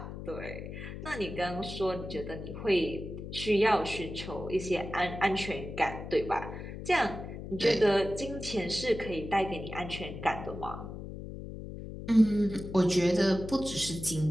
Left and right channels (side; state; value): left; noise; hum, 9 dB below the sound